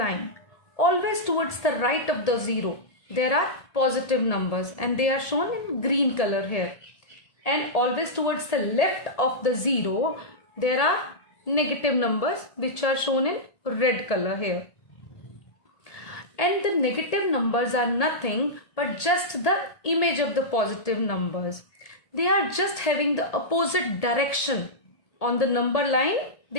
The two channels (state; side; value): late; right; 1.8 ms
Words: always towards the right of the zero, there are positive numbers and they are shown in green color here. And always towards the left of the zero, there are negative numbers which are shown in red color here. And the negative numbers are nothing but just the image of the positive numbers. They are just having the opposite direction. On the number line,